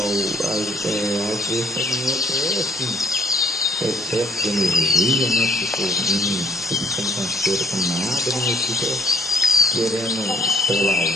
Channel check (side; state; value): both; normal; correlation 0.61